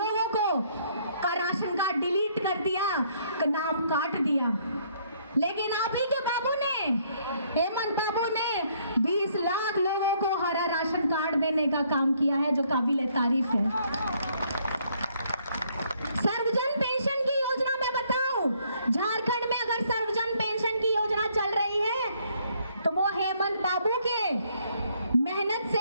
को का राशन कार्ड डिलीट कर दिया, नाम काट दिया। लेकिन आप ही के बाबू ने, हेमंत बाबू ने 20 लाख लोगों को हरा राशन कार्ड देने का काम किया है, जो काबिल तारीफ है। सर्वजन पेंशन की योजना में बताऊं, झारखंड में अगर सर्वजन पेंशन की योजना चल रही है तो वो हेमंत बाबू के मेहनत से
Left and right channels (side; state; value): both; inverted; correlation -0.67